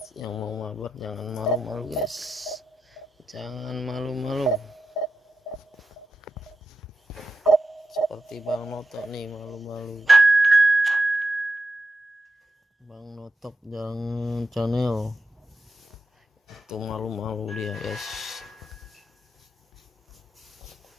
yang mau mabar jangan malu-malu guys. Jangan malu-malu. Seperti Bang Notok nih, malu-malu. Bang Notok jangan channel. Itu malu-malu dia, guys.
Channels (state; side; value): normal; both; correlation 0.89